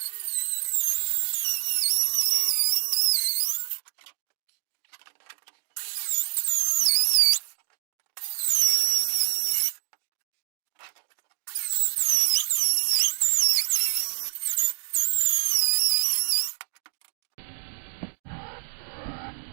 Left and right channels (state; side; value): silent; left; digital silence